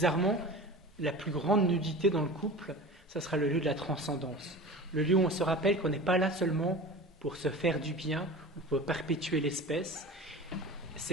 la plus grande nudité dans le couple, ça sera le lieu de la transcendance. Le lieu où on se rappelle qu'on n'est pas là seulement pour se faire du bien ou pour perpétuer l'espèce.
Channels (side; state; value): both; normal; correlation 0.35